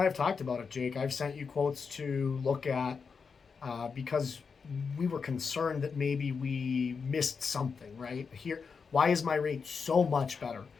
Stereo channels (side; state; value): right; quieter; 5.5 dB